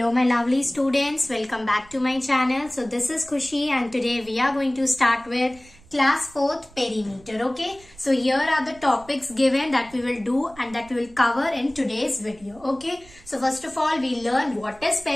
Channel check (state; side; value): noise; right; rumble, 25 dB below the sound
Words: my lovely students, welcome back to my channel. So this is Khushi and today we are going to start with class 4th perimeter. Okay, so here are the topics given that we will do and that we will cover in today's video. Okay, so first of all we learn what is